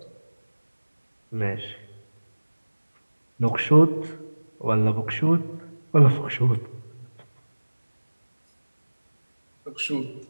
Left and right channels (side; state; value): both; inverted; correlation -1.00